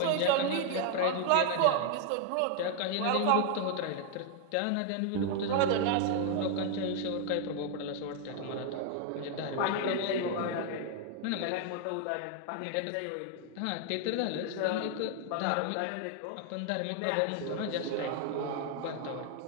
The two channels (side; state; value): both; different; correlation 0.00